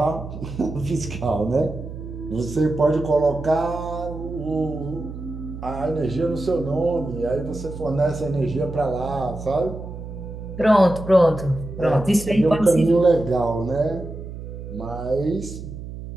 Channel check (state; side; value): noise; right; hum, 10 dB below the sound